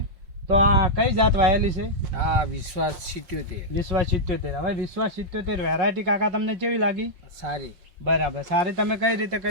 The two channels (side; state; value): left; late; 5.6 ms